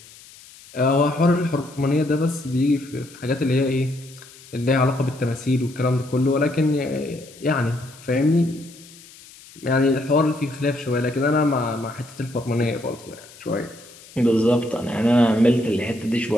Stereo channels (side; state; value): left; noise; hiss, 21 dB below the sound